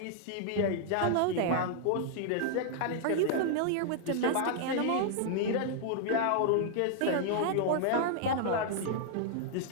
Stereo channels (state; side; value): different; both; correlation -0.01